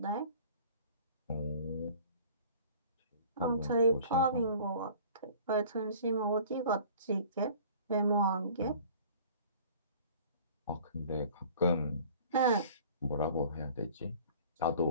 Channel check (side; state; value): both; inverted; correlation -0.47